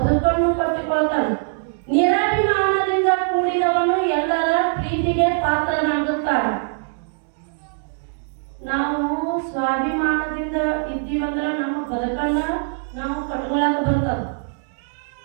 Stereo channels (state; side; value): silent; left; digital silence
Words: ಕಟ್ಟಿಕೊಳ್ತಾನೆ, ನಿರಾಭಿಮಾನದಿಂದ ಕೂಡಿದವನು ಎಲ್ಲರ ಪ್ರೀತಿಗೆ ಪಾತ್ರನಾಗುತ್ತಾನೆ. ನಾವು ಸ್ವಾಭಿಮಾನದಿಂದ ಇದ್ದೀವಂದ್ರೆ ನಮ್ಮ ಬದುಕನ್ನ ನಾವು ಕಟ್ಕೊಳಕ್ ಬರ್ತದ.